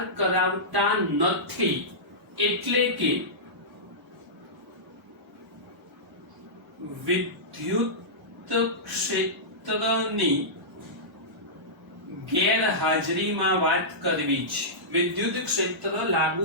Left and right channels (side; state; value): both; normal; correlation -0.15